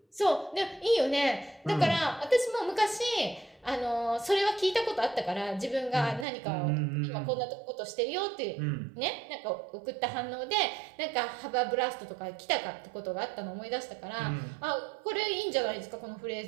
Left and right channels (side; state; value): left; drops out; at 6.2 s